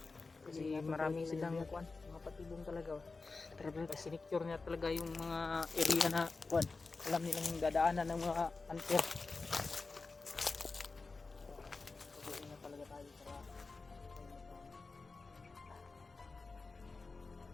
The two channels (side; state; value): right; quieter; 4.0 dB